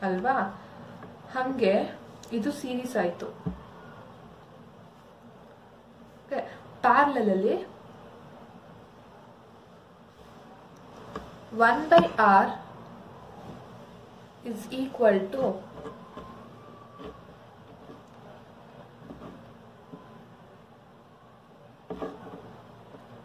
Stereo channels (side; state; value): both; identical; correlation 1.00